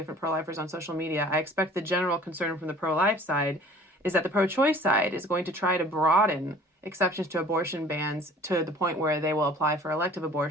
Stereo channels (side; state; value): both; normal; correlation 0.49